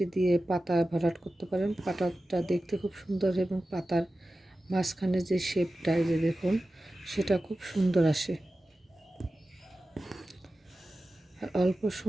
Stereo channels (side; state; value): both; normal; correlation 0.94